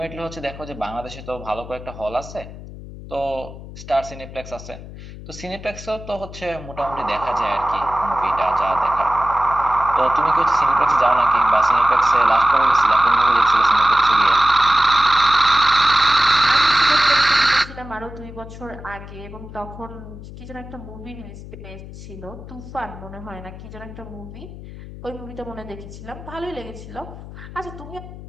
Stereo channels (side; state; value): left; noise; hum, 14 dB below the sound